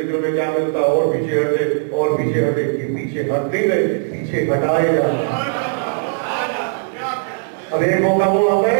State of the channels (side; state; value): left; silent; digital silence